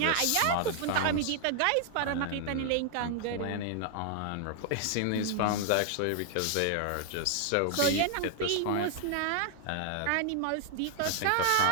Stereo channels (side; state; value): both; different; correlation 0.00